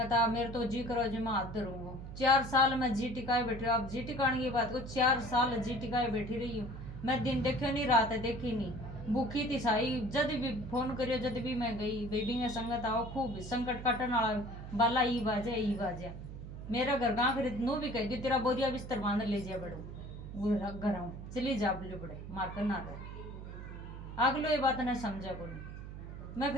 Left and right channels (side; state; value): right; noise; hum, 10 dB below the sound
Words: आ, मेरे तो जी करो जी मैं हाथ धरूंगा। 4 साल में जी टिकाए बैठी, आप जी टिकाने की बात को 4 साल जी टिकाए बैठी रही हूँ मैं। दिन देखे नहीं, रात देखी नहीं, भूखी थी साई। जद भी फोन करियो, जद भी मैं गई बेबी में संगत आओ, खूब संकट काटन वाला बाला ई बाजे मेरा घर गाँव खरीद नू भी कह दी तेरा बोरिया बिस्तर बांध ले जाए बड़ो घर आऊँ चली जा बोले बड़े मार कर ना रहे। अगलो ये बात नहीं समझा को, मैं